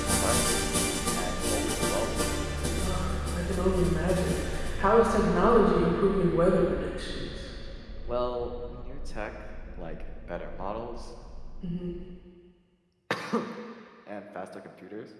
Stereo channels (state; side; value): identical; both; correlation 1.00